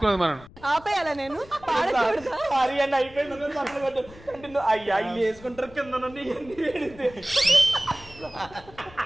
మనం. ఆపేయాలా నేను అయిపోయింది. అయ్యా ఇల్లు వేసుకుంటారు కింద నుండి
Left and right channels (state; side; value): noise; left; rumble, 21 dB below the sound